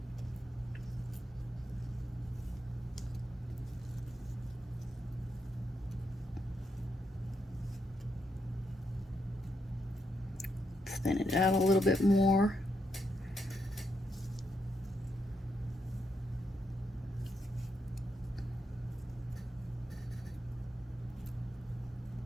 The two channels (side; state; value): both; normal; correlation 0.81